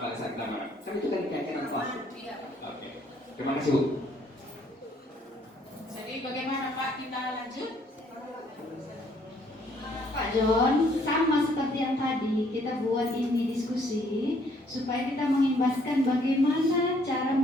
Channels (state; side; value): normal; both; correlation 0.65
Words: pada saat kita mana. Kan itu kan keyakinan kelas. Oke. Terima kasih Bu. Jadi bagaimana Pak, kita lanjut? Pak John, sama seperti yang tadi kita buat ini diskusi supaya kita mengimbaskan bagaimana cara